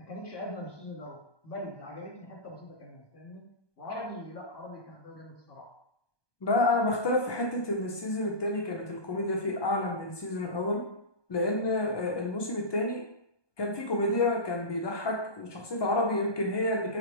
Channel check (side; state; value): right; late; 1.2 ms